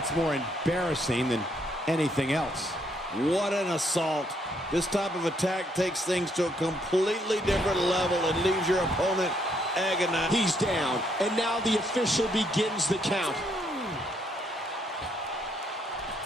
more embarrassing than anything else. What an assault. This type of attack takes things to a completely different level and leaves your opponent agonized. He's down, and now the official begins the count.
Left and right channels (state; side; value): normal; both; correlation 0.72